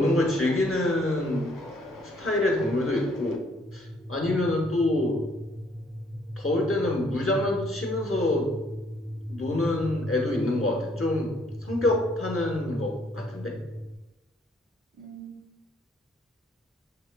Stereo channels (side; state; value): both; normal; correlation 0.65